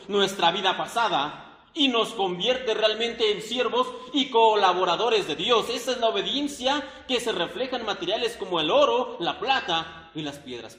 nuestra vida pasada. Y nos convierte realmente en siervos y colaboradores de Dios. Esa es la obediencia que se refleja en materiales como el oro, la plata y las piedras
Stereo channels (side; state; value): both; identical; correlation 1.00